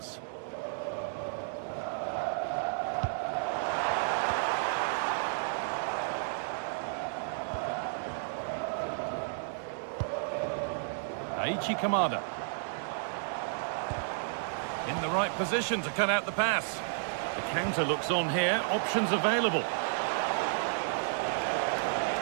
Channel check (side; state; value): left; silent; digital silence